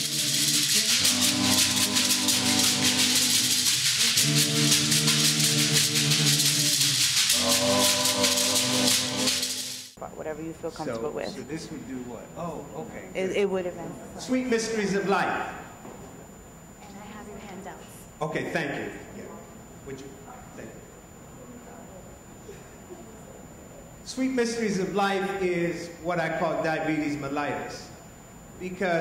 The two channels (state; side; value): identical; both; correlation 1.00